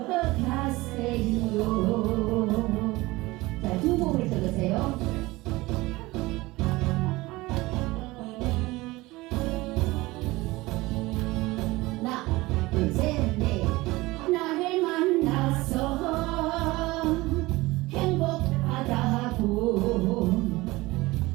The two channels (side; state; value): left; quieter; 20.6 dB